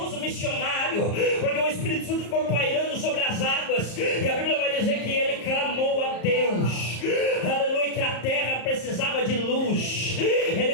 missionário, porque o Espírito Santo ficou pairando sobre as águas, e a Bíblia vai dizer que Ele clamou a Deus, aleluia, que a terra precisava de luz.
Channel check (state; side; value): late; right; 34 ms